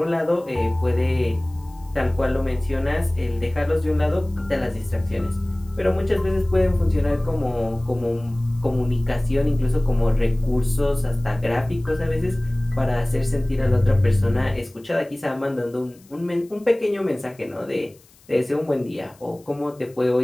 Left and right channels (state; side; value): noise; left; hiss, 29 dB below the sound